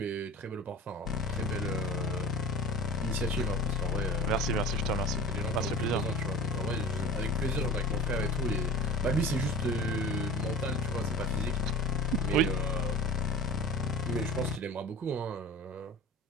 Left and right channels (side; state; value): both; normal; correlation 0.37